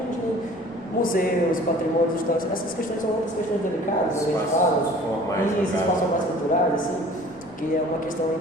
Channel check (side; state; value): both; normal; correlation 0.48